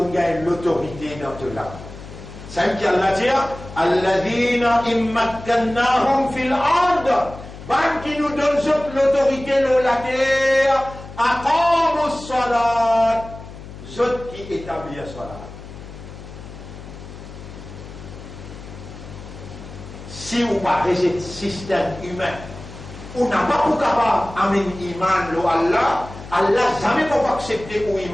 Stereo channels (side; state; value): left; noise; hum, 14 dB below the sound